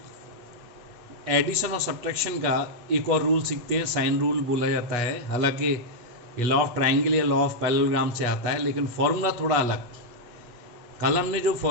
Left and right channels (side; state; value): left; late; 8.4 ms